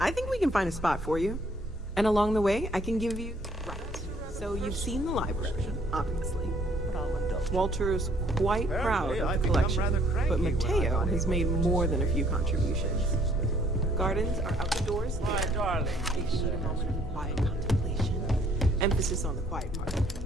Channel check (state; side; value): normal; both; correlation 0.63